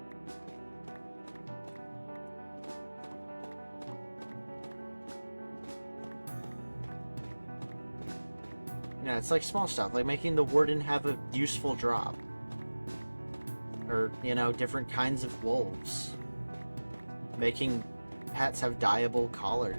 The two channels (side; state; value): both; inverted; correlation -1.00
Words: Yeah, it's like small stuff, like making the Warden have a useful drop. Or, you know, different kinds of wolves. Making hats have dyeable